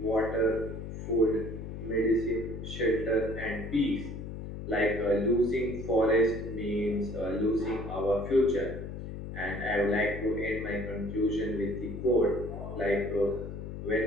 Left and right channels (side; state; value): left; noise; hum, 8 dB below the sound